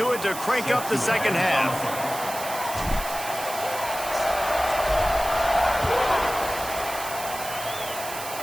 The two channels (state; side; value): noise; right; hiss, 9 dB below the sound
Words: it to crank up the second half.